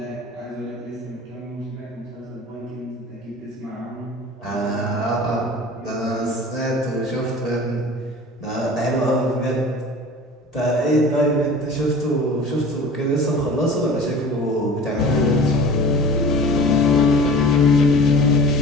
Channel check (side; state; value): both; normal; correlation 0.40